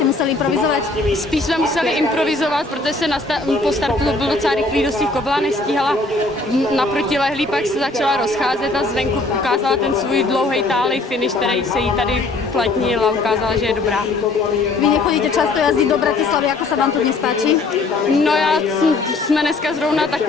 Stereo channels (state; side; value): quieter; right; 3.2 dB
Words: museli improvizovať? Spíš jsme museli improvizovat, protože se po startu byl docela rychlý dostih, kobyla nestíhala naproti lehlý, pak se začala rozcházet a zvenku ukázala ten svůj dlouhý tálej finish, který se jí tady platnil a ukázala, že je dobrá. Vy nechodíte často jazdiť do Bratislavy, ako sa vám to dnes páči? No jsme dneska zrovna